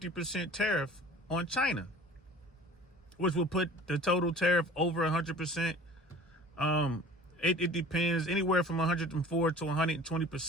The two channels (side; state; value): both; normal; correlation 0.45